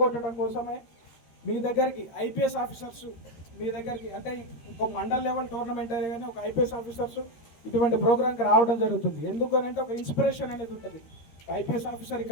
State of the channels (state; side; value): late; right; 13 ms